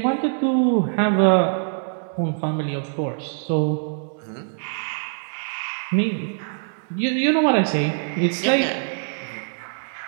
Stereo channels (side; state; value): left; silent; digital silence